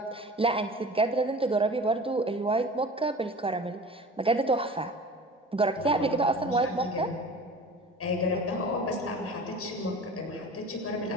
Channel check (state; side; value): normal; both; correlation 0.39